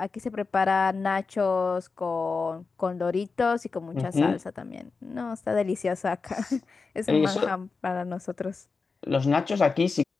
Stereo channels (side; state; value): right; quieter; 4.5 dB